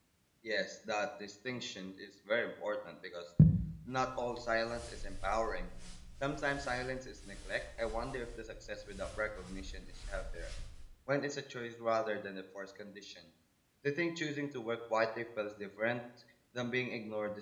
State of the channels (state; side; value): identical; both; correlation 1.00